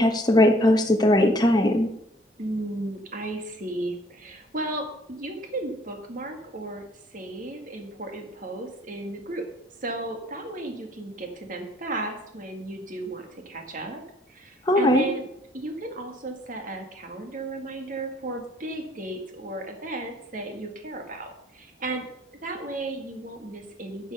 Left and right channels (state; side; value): normal; both; correlation 0.61